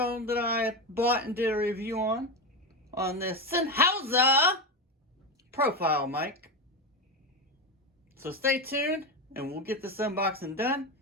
that I bought and did a review on this Sennheiser profile mic. So stay tuned and we'll get this unboxing done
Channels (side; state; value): both; normal; correlation 0.15